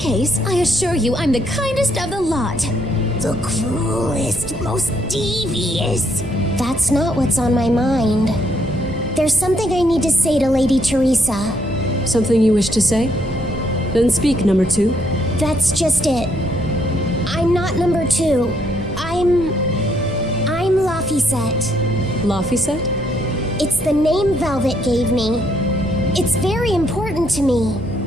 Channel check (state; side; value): noise; right; hum, 17 dB below the sound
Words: I assure you I'm the kindest of the lot. The cruelest, most devious. That's not what's on my mind. There's something I need to say to Lady Teresa. Something you wish to say? Then speak, number 2. That's just it. I'm not number 2. I'm Laphicet. Laphicet? It's the name Velvet gave me. It's very important to me.